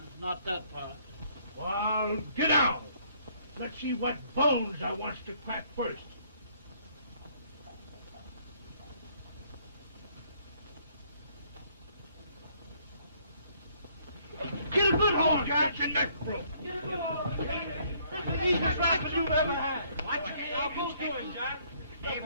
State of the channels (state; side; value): inverted; both; correlation -0.65